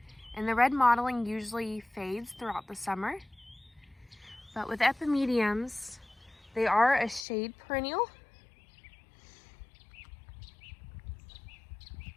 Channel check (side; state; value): right; drops out; at 7.2 s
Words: And the red mottling usually fades throughout the summer, but with Epimediums, they are a shade perennial.